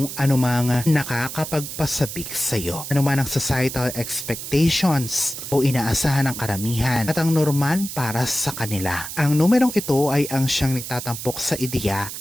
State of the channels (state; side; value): noise; right; hiss, 8 dB below the sound